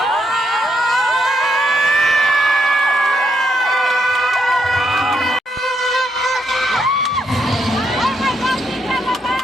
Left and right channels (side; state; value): both; normal; correlation 0.78